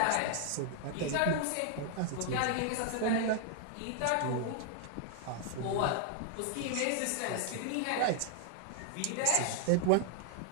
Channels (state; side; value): different; both; correlation 0.00